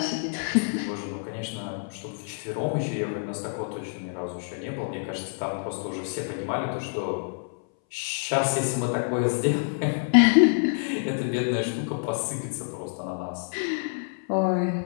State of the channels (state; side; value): silent; right; 60 dB below the other